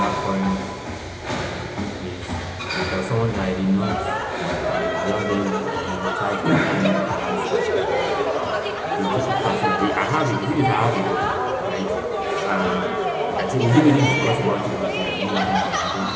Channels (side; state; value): both; identical; correlation 1.00